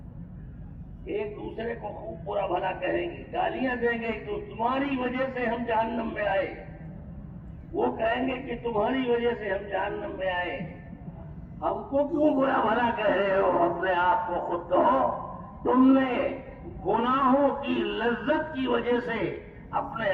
ایک دوسرے کو خوب برا بھلا کہیں گے، گالیاں دیں گے کہ تمہاری وجہ سے ہم جہنم میں آئے. وہ کہیں گے کہ تمہاری وجہ سے ہم جہنم میں آئے. ہم کو کیوں برا بھلا کہہ رہے ہو؟ اپنے آپ کو خود کہو. تم نے گناہوں کی لذت کی وجہ سے اپنے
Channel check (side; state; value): both; identical; correlation 1.00